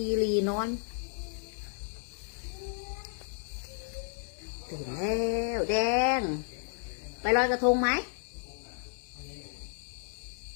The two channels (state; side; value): silent; right; 56 dB below the other